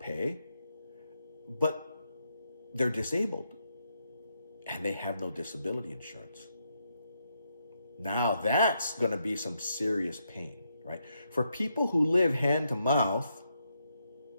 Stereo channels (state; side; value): inverted; both; correlation -0.80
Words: but they're disabled and they have no disability insurance. Now that's going to be some serious pain, right? For people who live hand to mouth,